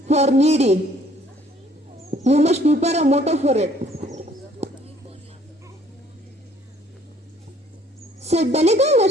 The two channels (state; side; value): normal; both; correlation 0.60